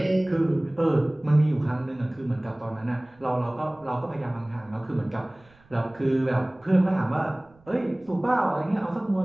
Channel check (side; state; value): right; noise; rumble, 30 dB below the sound